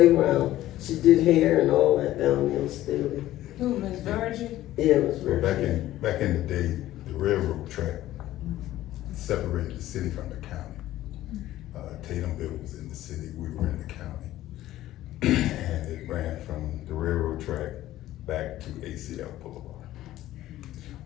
She did hair and all that down there in Staley. Who, Miss Virgin? Yeah, Miss Well, Virgin. back in the day, the railroad track separated the city from the county. Tatumville was in the city, we were in the county. And it ran from the railroad track back to ACL Boulevard,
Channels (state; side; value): quieter; right; 14.5 dB